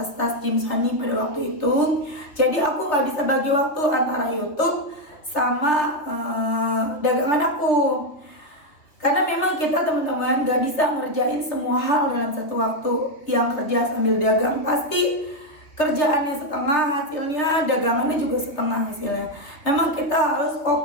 Jim Sunny pada waktu itu. Jadi aku gak bisa bagi waktu antara YouTube sama dagangan aku. Karena memang kita teman-teman gak bisa ngerjain semua hal dalam satu waktu. Yang kerja sambil dagang pasti kerjaannya setengah hasilnya, dagangannya juga setengah hasilnya. Memang kita harus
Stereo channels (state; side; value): late; right; 3.0 ms